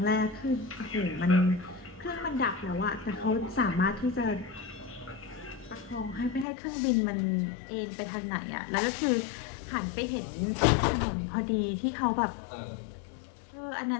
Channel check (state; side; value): drops out; right; at 6.5 s